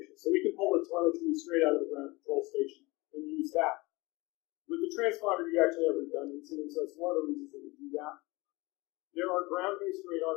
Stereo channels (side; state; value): right; quieter; 23.5 dB